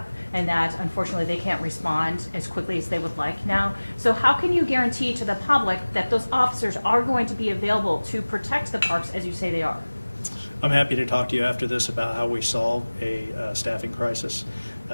and that unfortunately they can't respond as quickly as they would like now. So how can you guarantee to the public that those officers are going to be available to protect the parks as you say they are? I'm happy to talk to you after this about how we solve a staffing crisis.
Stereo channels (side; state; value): both; inverted; correlation -1.00